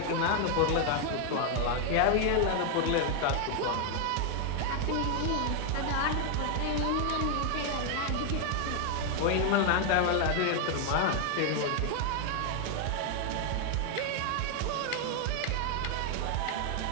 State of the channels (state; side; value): different; both; correlation 0.00